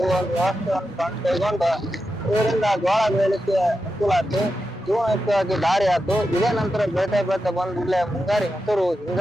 ಒಂದು ವ್ಯವಸ್ಥೆಯನ್ನು ಕೈಗೊಂಡು ಇದರಿಂದ ಜೋಳ ಬೆಳೆಯಲಿಕ್ಕೆ ಅನುಕೂಲ ಆಯ್ತು. ಜೀವನಯುಕ್ತವಾಗಿ ದಾರಿ ಆಯ್ತು. ಇದೇ ನಂತರ ಬೆಳೀತಾ ಬಂದಿಲ್ಲ ಮುಂಗಾರಿ ಹೆಸರು,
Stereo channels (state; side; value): normal; both; correlation 0.89